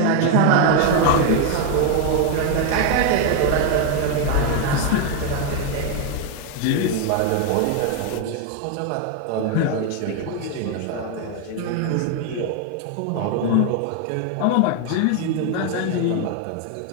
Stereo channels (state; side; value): different; both; correlation 0.01